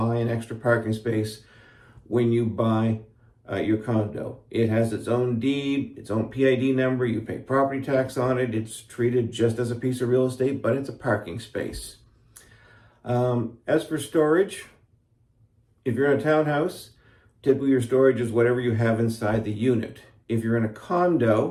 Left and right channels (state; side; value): identical; both; correlation 1.00